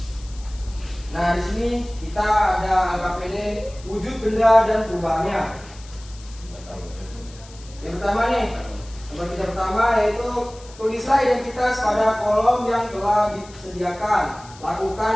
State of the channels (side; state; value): left; noise; hiss, 21 dB below the sound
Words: Nah, di sini kita ada LKPD wujud benda dan perubahannya. Yang pertama nih, lembar kerja pertama yaitu tulislah identitas pada kolom yang telah disediakan. Lakukan